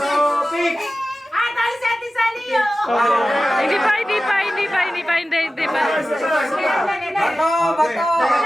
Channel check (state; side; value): normal; both; correlation 0.95